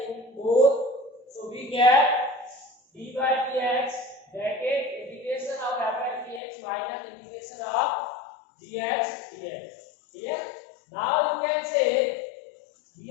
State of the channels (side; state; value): right; drops out; at 6.4 s